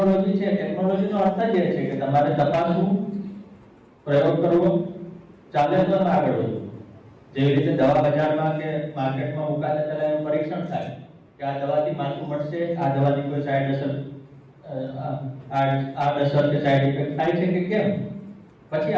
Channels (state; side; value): identical; both; correlation 1.00